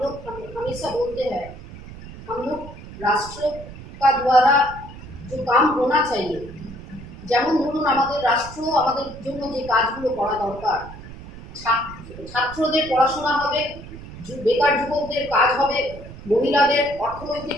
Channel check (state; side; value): noise; right; rumble, 15 dB below the sound